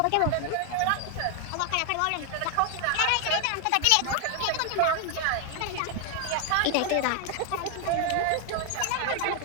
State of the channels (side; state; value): both; different; correlation 0.00